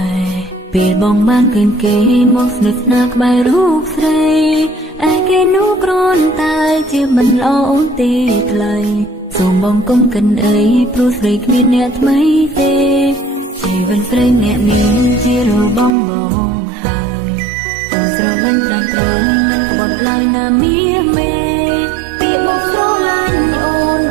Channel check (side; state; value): left; drops out; at 15.9 s